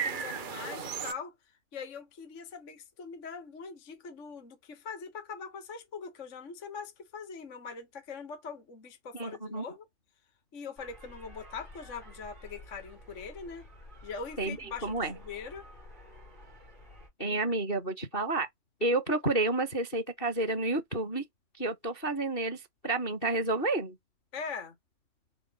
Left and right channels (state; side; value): late; right; 2.7 ms